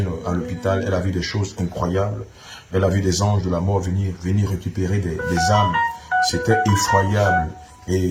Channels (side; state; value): both; identical; correlation 1.00